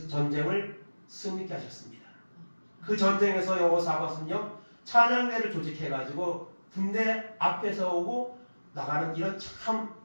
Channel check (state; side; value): inverted; both; correlation -1.00